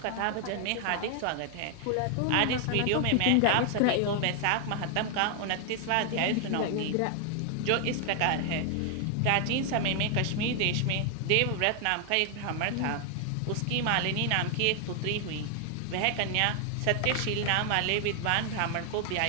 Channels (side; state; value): both; different; correlation 0.00